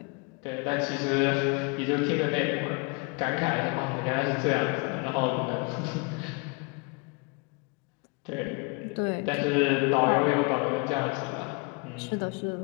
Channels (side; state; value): right; quieter; 31.1 dB